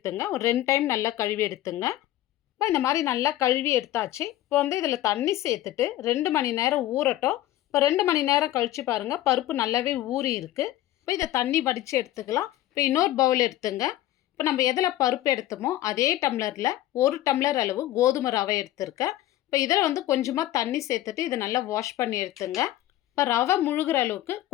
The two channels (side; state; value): right; quieter; 14.4 dB